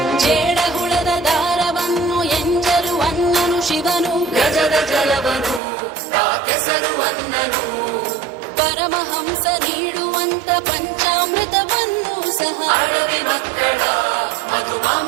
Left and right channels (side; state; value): left; drops out; at 5.6 s